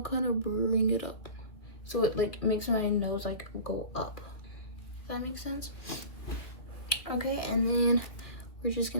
kind of bring it up. So it like makes my nose like go up. If that makes sense? Okay, and then we're just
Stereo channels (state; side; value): late; right; 2.5 ms